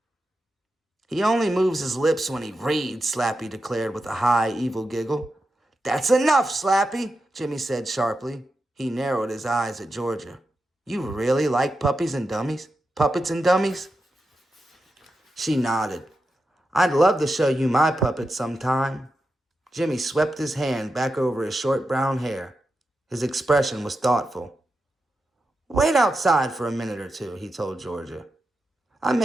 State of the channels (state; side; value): normal; both; correlation 0.89